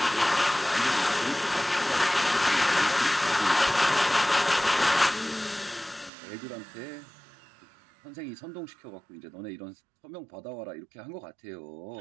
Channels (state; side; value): drops out; left; at 6.1 s